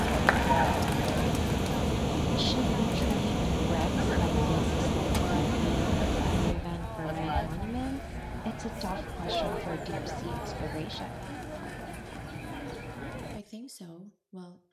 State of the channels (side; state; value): both; identical; correlation 1.00